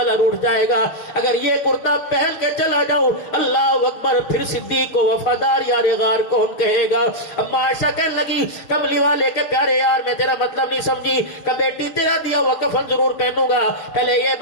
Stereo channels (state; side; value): late; right; 6.4 ms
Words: روٹ جائے گا۔ اگر یہ کرتا پہن کے چلا جاؤں، اللہ اکبر، پھر صدیق کو وفادار یار غار کون کہے گا؟ اما عائشہ کہنے لگی کملی والے کے پیارے یار میں تیرا مطلب نہیں سمجھی کہ بیٹی تیرا دیا ہوا کفن ضرور پہنوں گا، پہلے یہ